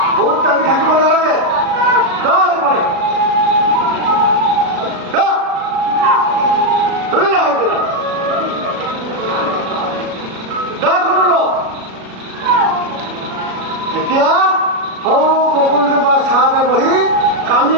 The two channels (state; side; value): late; left; 37 ms